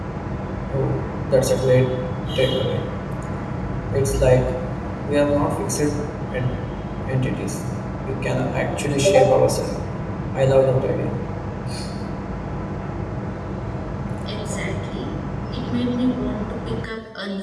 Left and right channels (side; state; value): both; identical; correlation 1.00